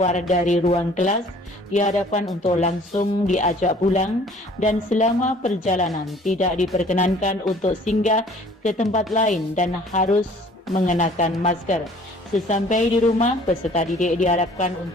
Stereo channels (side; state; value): both; normal; correlation 0.53